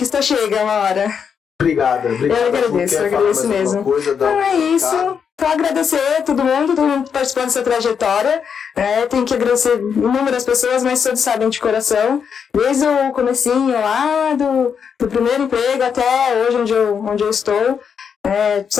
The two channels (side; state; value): right; quieter; 6.9 dB